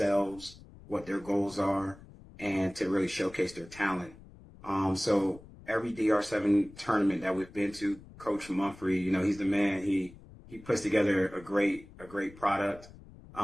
what their goals are, and to really showcase their talent. So every DR7 tournament that we've been to, Coach Mumphrey, he's the man. He puts together a great product,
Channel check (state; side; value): noise; left; rumble, 20 dB below the sound